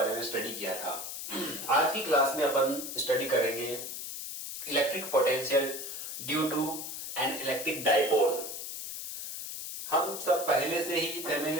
में स्टडी किया था। आज की क्लास में अपन स्टडी करेंगे electric potential due to an electric dipole. हम सब पहले से ही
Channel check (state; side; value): noise; left; hiss, 7 dB below the sound